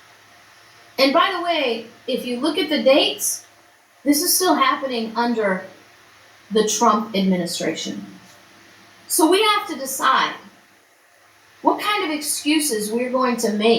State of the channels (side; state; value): both; identical; correlation 1.00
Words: And by the way, if you look at the dates, this is still happening under the Trump administration. So we have to decide what kind of excuses we're going to